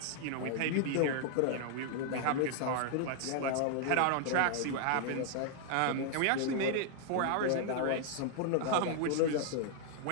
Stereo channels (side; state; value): both; different; correlation 0.00